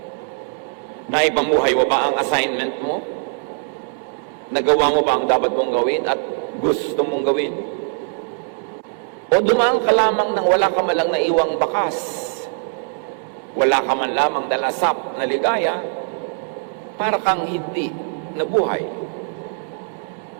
Naipamuhay mo ba ang assignment mo? Nagawa mo ba ang dapat mong gawin at gusto mong gawin? O dumaan ka lamang nang wala ka man lang naiwang bakas? Wala ka man lamang dalasap na ligaya para kang hindi nabuhay?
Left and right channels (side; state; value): left; silent; digital silence